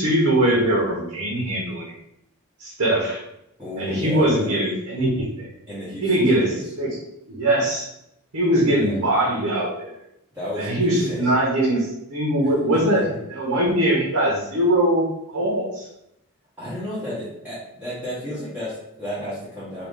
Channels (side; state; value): both; normal; correlation 0.17